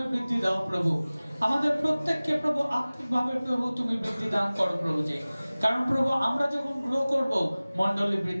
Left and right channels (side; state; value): both; inverted; correlation -0.99